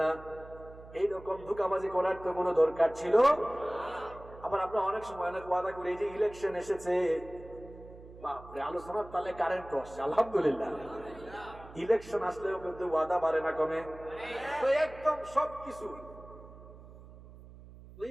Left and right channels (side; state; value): right; noise; hum, 18 dB below the sound